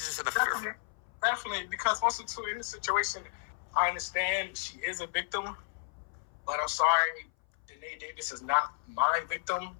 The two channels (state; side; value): silent; right; 56 dB below the other